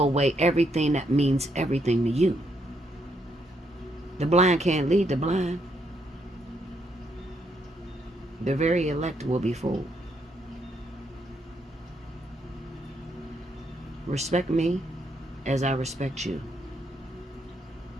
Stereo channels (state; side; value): normal; both; correlation 0.75